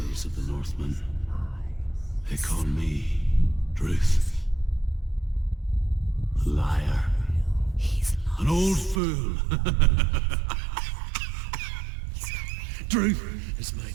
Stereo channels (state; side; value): drops out; left; at 9.0 s